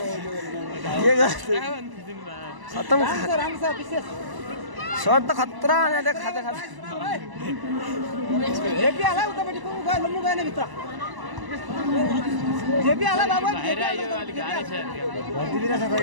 खत्म शॉट त खतरा खाते खाते जेपी आला उतापट्टि को गयो लम्बु गएन भित्र जेपी आला बाबु बाहिर आयो अलि गाह्रो छ भर्तिदिरा छ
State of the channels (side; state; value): left; late; 1.0 ms